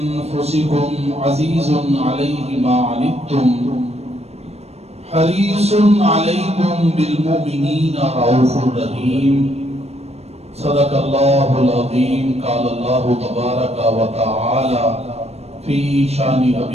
عزيز عليه ما عنتم حريص عليكم بالمؤمنين رؤوف رحيم صدق الله العظيم قال الله تبارك وتعالى في شان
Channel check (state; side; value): late; left; 0.31 ms